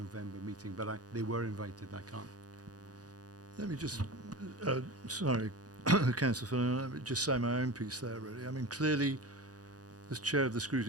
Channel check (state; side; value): late; left; 0.68 ms